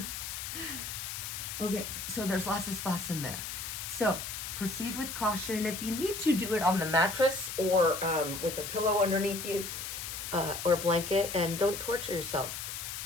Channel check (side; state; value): left; noise; hiss, 6 dB below the sound